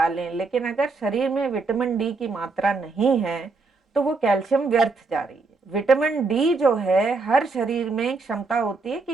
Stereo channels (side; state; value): left; quieter; 4.0 dB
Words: लें, लेकिन अगर शरीर में विटामिन डी की मात्रा नहीं है तो वो कैल्शियम व्यर्थ जा रही है। विटामिन डी जो है, हर शरीर में क्षमता होती है